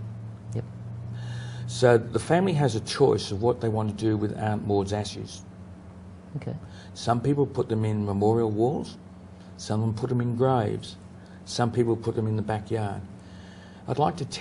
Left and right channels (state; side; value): identical; both; correlation 1.00